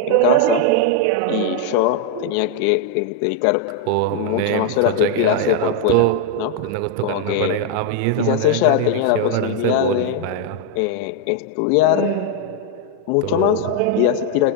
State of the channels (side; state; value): both; different; correlation 0.00